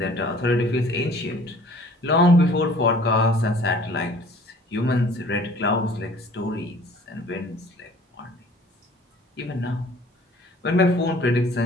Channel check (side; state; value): both; normal; correlation 0.51